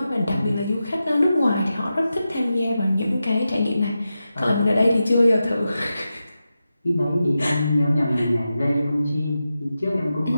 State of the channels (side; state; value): both; inverted; correlation -0.91